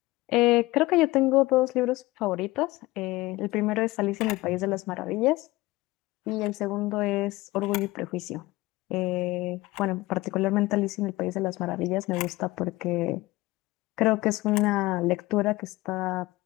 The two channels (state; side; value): quieter; right; 20.0 dB